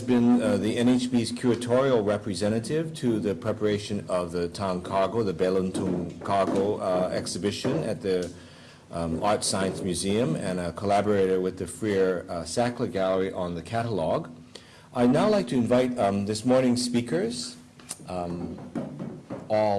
been the NHB's curatorial representative to the preparation of the Tang Cargo, the Beluntung Cargo exhibition at the Art Science Museum, and a collaborator with the Freer Sackler Gallery on the catalog. I'd now like to invite this morning's speakers,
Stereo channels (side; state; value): both; identical; correlation 1.00